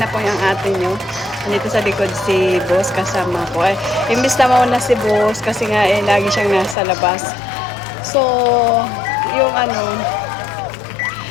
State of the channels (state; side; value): drops out; right; at 6.8 s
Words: po yung ate nyo. Nandito sa likod si boss kasama ko. Imbis na mauna si boss kasi nga lagi siyang nasa labas. So, yung